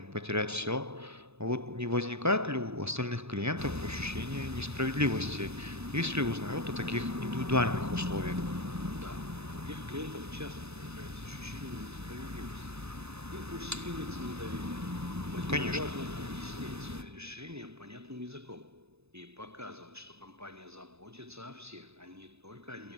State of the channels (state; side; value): late; left; 0.79 ms